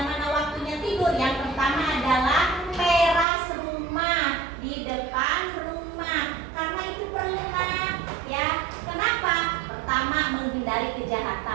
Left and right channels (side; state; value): left; drops out; at 3.2 s